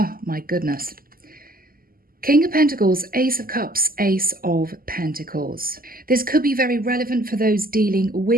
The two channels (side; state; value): left; late; 0.42 ms